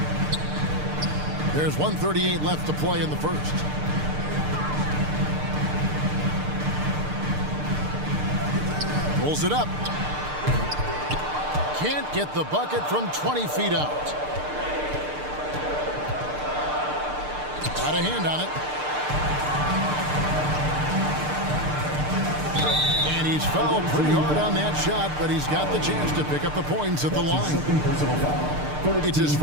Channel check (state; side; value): late; left; 6.7 ms